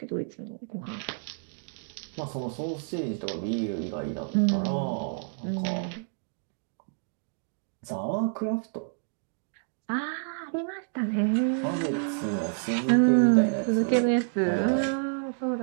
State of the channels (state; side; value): silent; left; digital silence